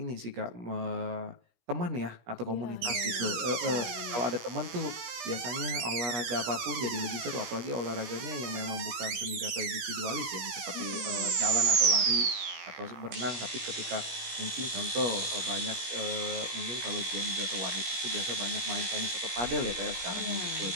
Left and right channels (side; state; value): left; late; 17 ms